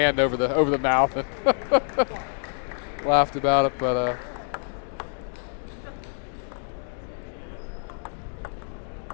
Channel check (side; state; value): right; silent; 61 dB below the other